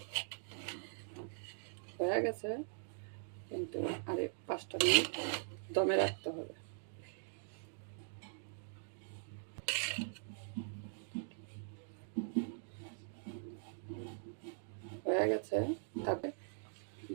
হয়ে গেছে, কিন্তু আরে 5টা মিনিট দমে রাখতে হবে। হয়ে গেছে, তারপরে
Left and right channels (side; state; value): left; silent; digital silence